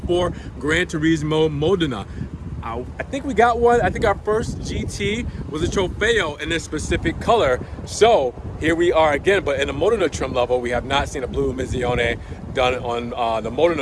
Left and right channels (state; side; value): identical; both; correlation 1.00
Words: Granturismo Modena. I think we got one. I think our first GT was a Trofeo in this specific color. So here we are again, but in the Modena trim level, we have not seen a Blue Emissione done on the